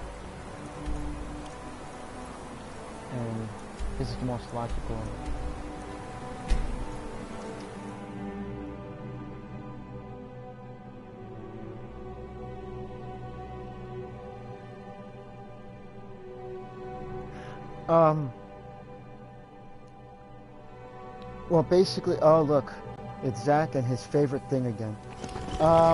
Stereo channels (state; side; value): identical; both; correlation 1.00